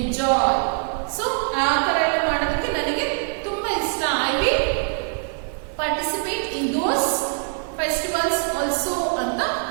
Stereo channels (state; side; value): silent; left; digital silence